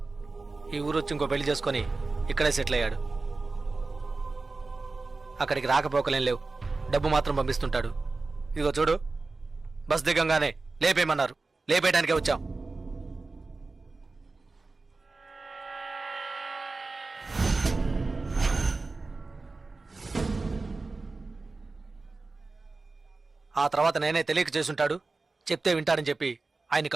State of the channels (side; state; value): left; quieter; 3.7 dB